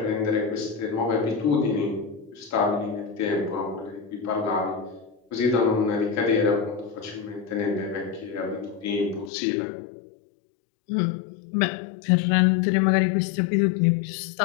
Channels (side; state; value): right; drops out; at 9.3 s